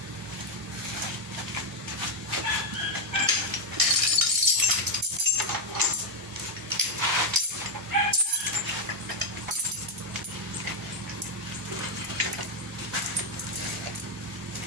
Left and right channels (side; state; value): both; normal; correlation 0.03